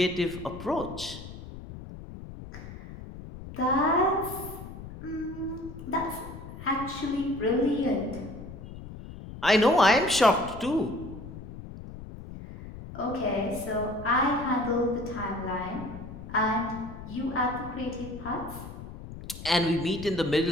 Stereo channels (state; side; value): noise; left; rumble, 12 dB below the sound